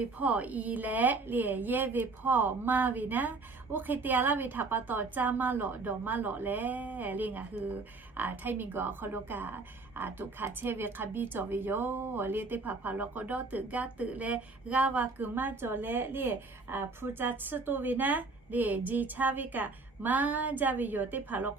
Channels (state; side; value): quieter; left; 3.8 dB